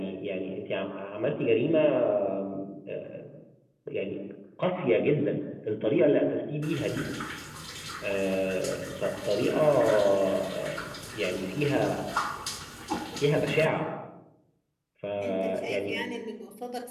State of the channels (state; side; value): identical; both; correlation 1.00